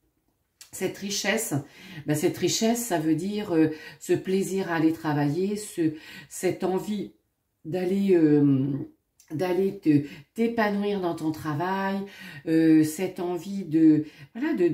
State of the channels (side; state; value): both; identical; correlation 1.00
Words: cette richesse. Ben, cette richesse, ça veut dire ce plaisir à aller travailler, cette envie d'aller t'épanouir dans ton travail, cette envie de